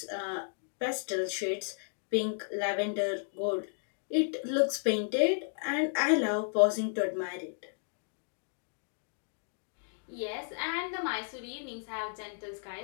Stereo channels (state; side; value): silent; right; digital silence